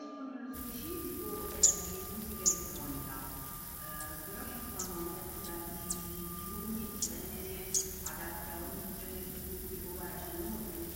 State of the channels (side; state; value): both; identical; correlation 1.00